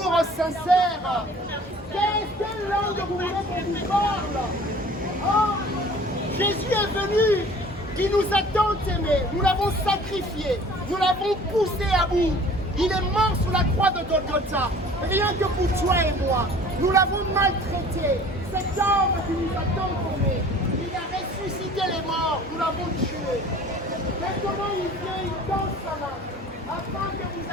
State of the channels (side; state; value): both; normal; correlation 0.48